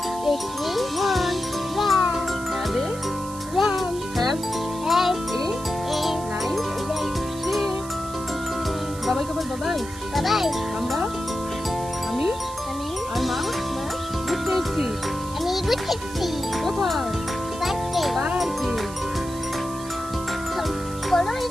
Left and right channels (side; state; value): right; noise; hiss, 15 dB below the sound